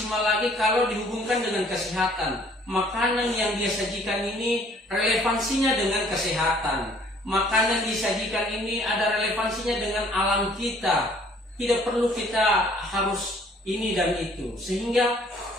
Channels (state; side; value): normal; both; correlation 0.58